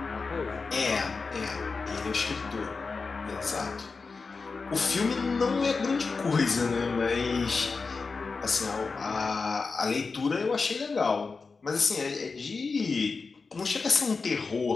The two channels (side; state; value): right; quieter; 4.5 dB